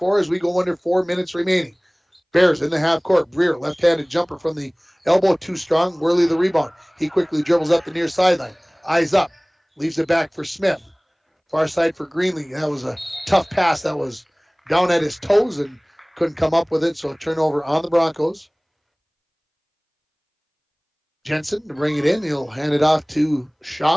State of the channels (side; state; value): both; identical; correlation 1.00